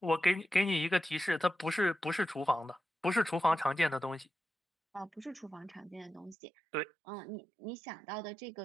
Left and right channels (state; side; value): drops out; left; at 6.4 s